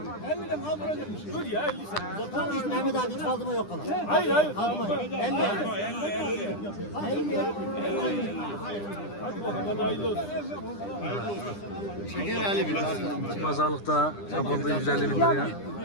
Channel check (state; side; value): late; right; 9.9 ms